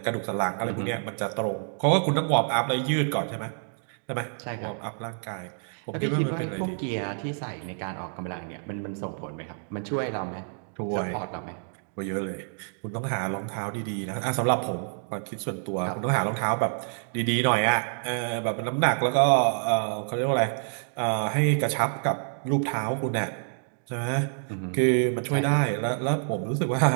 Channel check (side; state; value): left; silent; 60 dB below the other